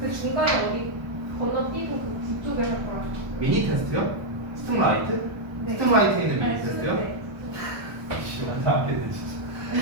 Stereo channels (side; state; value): left; late; 1.1 ms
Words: 중간에 어디 건너뛰고 그쪽에 할 거라고. 미니 테스트요? 스팀라이트? 네. 스팀라이트에 있는 미니 아니, 테스트요? 네. 지금 안하겠네 진짜.